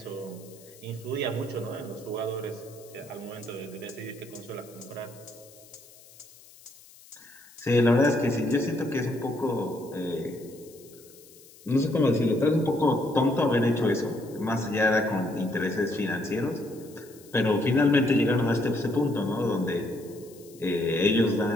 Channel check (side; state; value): left; noise; hiss, 23 dB below the sound